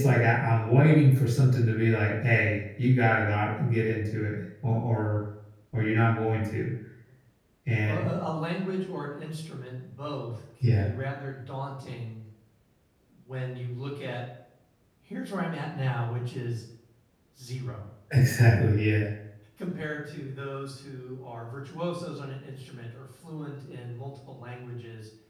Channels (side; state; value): both; identical; correlation 1.00